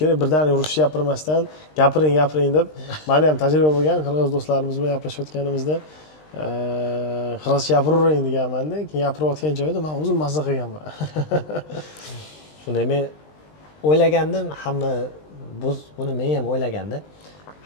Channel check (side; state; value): right; late; 20 ms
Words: kerak, birdaniga ruscha gapirmasdan gapiring deb. Meni ham tajriba bo'lgan, qirg'iz do'stlarimiz bilan gaplashayotganimizda qirg'izcha gapiravering deganman-da, keyin gapirayotgan joyda men o'zim mazza qilganman. Shunday men o'ylagandim, buni men ham o'ylagandim.